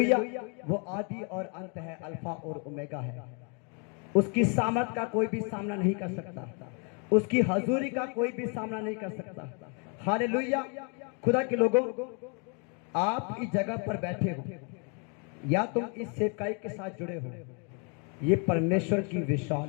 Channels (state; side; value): quieter; right; 36.5 dB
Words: वो आदि और अंत है, अल्फा और ओमेगा है। उसकी सामर्थ का कोई भी सामना नहीं कर सकता, उसकी हजूरी का कोई भी सामना नहीं कर सकता। हालेलुया। खुदा के लोगों, आप इस जगह पर बैठे हो या तुम इस सेवकाई के साथ जुड़े हो, ये परमेश्वर की